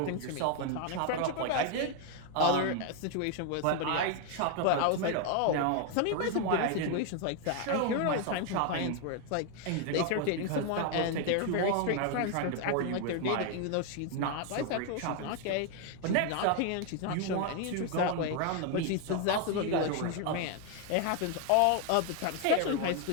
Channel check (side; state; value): both; different; correlation 0.01